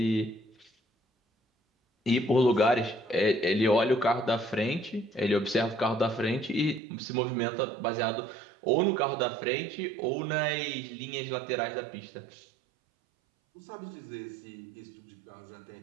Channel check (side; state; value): left; drops out; at 6.8 s